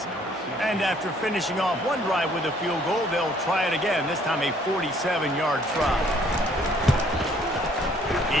And after finishing off one drive with a field goal, they'll try it again, this time a 47-yard try.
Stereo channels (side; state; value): both; normal; correlation 0.62